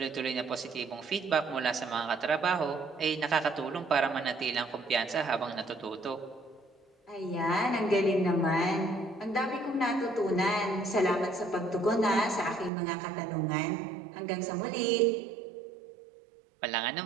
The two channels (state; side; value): drops out; left; at 12.7 s